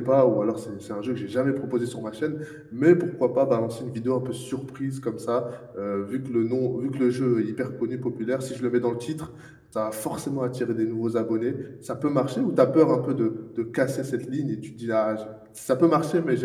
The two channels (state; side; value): identical; both; correlation 1.00